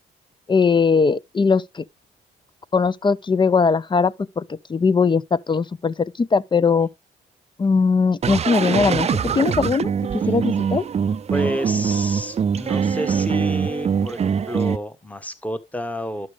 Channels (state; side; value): normal; both; correlation 0.68